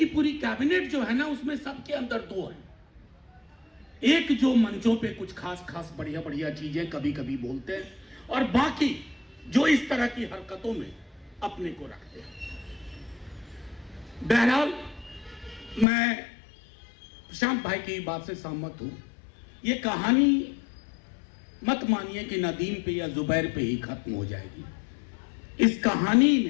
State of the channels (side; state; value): right; drops out; at 15.9 s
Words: पूरी कैबिनेट जो है ना, उसमें सबके अंदर 2 हैं। एक जो मंचों पे कुछ खास खास बढ़िया बढ़िया चीजें कभी कभी बोलते हैं, और बाकी जो इस तरह की हरकतों में अपने को रखते हैं। बहरहाल, मैं प्रशांत भाई की बात से सहमत हूं। ये कहानी मत मानिए कि नदीम पे या जुबैर पे ही खत्म हो जाएगी। इस कहानी